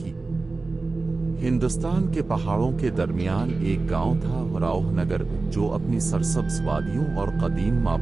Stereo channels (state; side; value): quieter; left; 3.6 dB